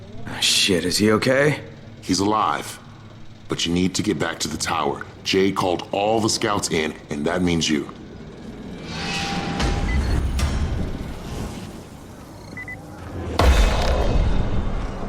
Shit, is he okay? He's alive, but you need to get back to the tower. Jade called all the scouts in, and that means you.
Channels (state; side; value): identical; both; correlation 1.00